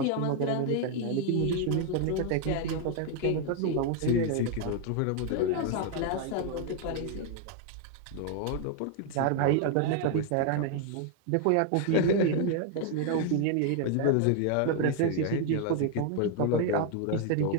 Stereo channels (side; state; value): both; different; correlation 0.00